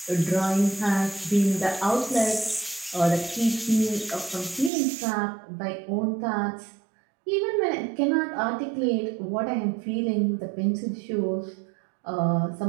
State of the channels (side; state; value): left; drops out; at 4.7 s